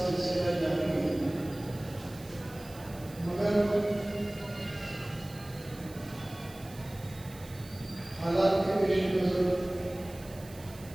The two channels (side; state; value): right; noise; hiss, 20 dB below the sound